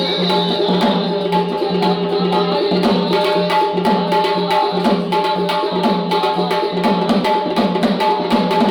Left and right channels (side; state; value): both; identical; correlation 1.00